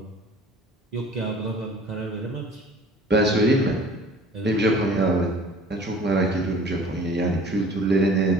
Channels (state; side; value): normal; both; correlation 0.48